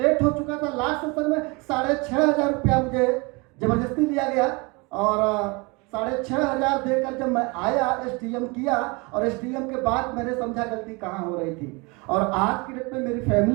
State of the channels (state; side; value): quieter; left; 27.8 dB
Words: हो चुका था। लास्ट सेशन में 6,500 रुपया मुझे जबरदस्ती लिया गया और 6,500 देकर जब मैं आया एसटीएम किया और एसटीएम के बाद मैंने समझा गलती कहाँ हो रही थी। और आज की डेट में मेरी